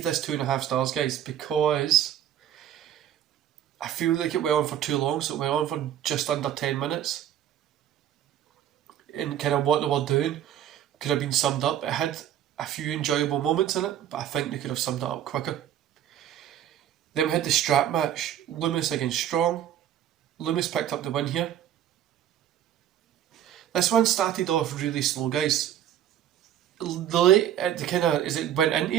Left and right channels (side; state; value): left; quieter; 10.8 dB